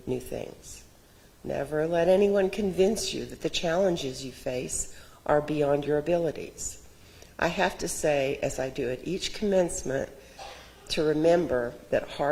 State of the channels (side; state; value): both; identical; correlation 1.00